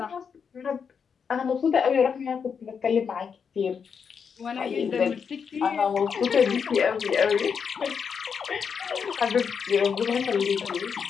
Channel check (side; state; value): right; quieter; 6.5 dB